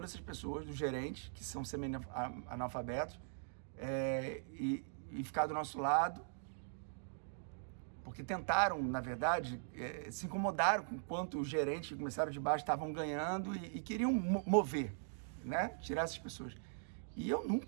essas pessoas, dos gerentes, que são semi-analfabetos, e ficar do nosso lado, porque tentaram, na verdade, se incomodaram com quanto os gerentes que começaram de baixo estavam ganhando e queriam mover, né? Tirar essas pessoas. E eu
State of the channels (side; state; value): left; silent; digital silence